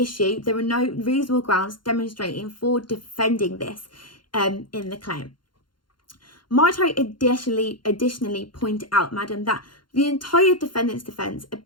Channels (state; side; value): late; right; 0.72 ms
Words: there are no reasonable grounds demonstrating for defending this in the claim. Might I additionally point out, madam, that the entire defendant's defence